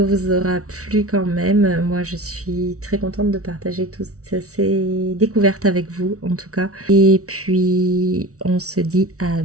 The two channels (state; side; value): late; left; 0.65 ms